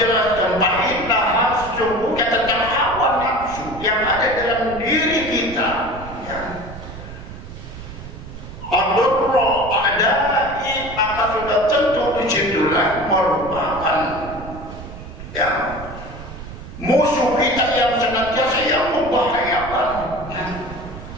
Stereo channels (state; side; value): noise; right; rumble, 13 dB below the sound